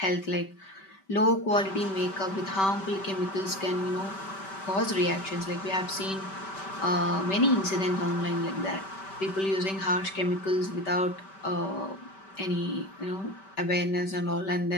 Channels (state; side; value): late; right; 5.2 ms